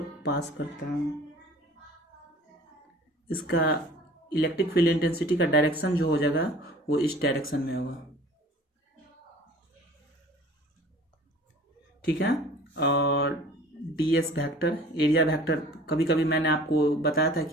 पास करता है। इसका इलेक्ट्रिक फील्ड इंटेंसिटी का डायरेक्शन जो हो जाएगा वो इस डायरेक्शन में होगा। ठीक है, और डीएस वेक्टर, एरिया वेक्टर, कभी कभी मैंने आपको बताया था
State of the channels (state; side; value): normal; both; correlation 0.47